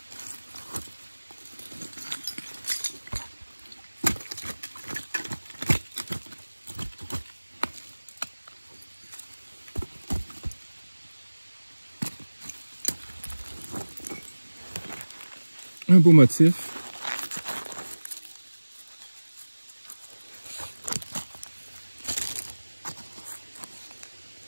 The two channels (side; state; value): both; inverted; correlation -1.00